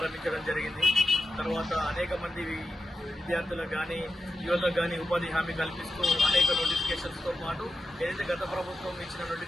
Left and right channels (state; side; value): normal; both; correlation 0.90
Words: జరిగింది. తర్వాత అనేక మంది విద్యార్థులకు కానీ, యువతకు కానీ ఉపాధి హామీ కల్పిస్తూ అనేక నోటిఫికేషన్స్తో పాటు ఏదైతే గత ప్రభుత్వం ఇచ్చిన